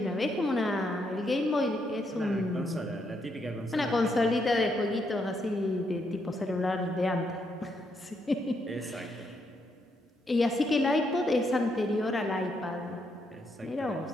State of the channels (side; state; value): both; normal; correlation 0.77